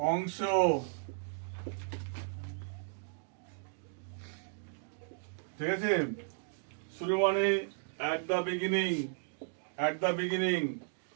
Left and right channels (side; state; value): left; silent; digital silence